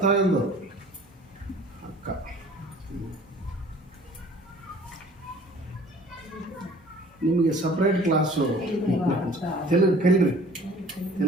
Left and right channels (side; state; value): both; normal; correlation 0.50